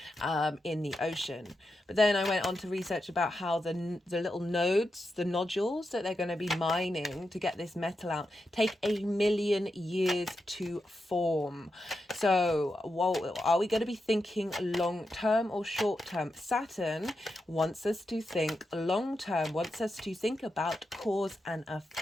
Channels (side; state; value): both; normal; correlation 0.87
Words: in the ocean. But then I went on to research about how the little nodes, the nodules that they're going to be mining to get this metal out, take 1,000,000 years to form. So are we going to be thinking long term or short term? Saturn wants us to think long term, wants us to think about cause and